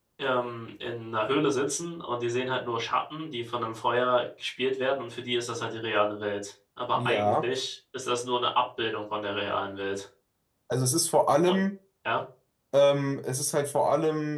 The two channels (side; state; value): both; identical; correlation 1.00